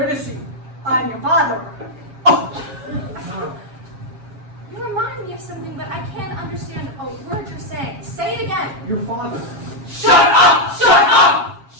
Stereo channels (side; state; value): left; late; 7.4 ms